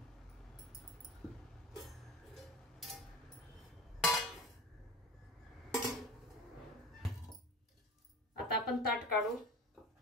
आता आपण ताट काढू.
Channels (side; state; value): both; normal; correlation 0.34